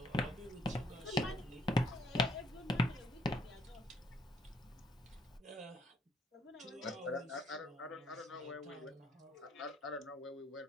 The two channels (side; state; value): both; normal; correlation 0.68